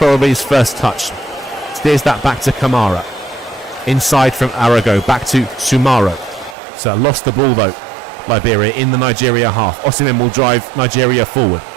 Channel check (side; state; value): left; drops out; at 6.6 s